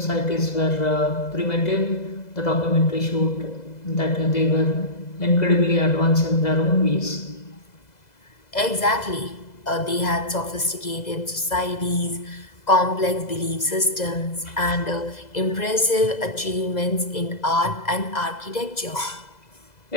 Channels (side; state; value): right; late; 2.0 ms